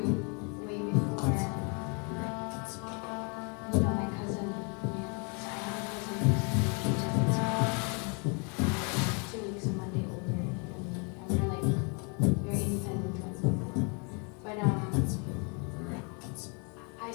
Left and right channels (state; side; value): quieter; right; 35.1 dB